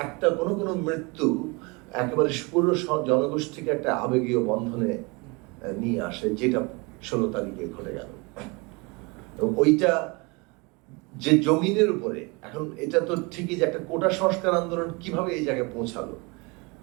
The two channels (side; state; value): left; quieter; 28.1 dB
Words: একটা কোনো মৃত্যু একেবারে পুরো জনগোষ্ঠীকে একটা আবেগীয় বন্ধনে নিয়ে আসে, যেটা 16 তারিখে ঘটে গেল। ওইটা যে জমিনের উপরে, এখন এটা তো ঠিকই যে একটা কোটা সংস্কার আন্দোলন কিভাবে এই জায়গায় পৌঁছালো,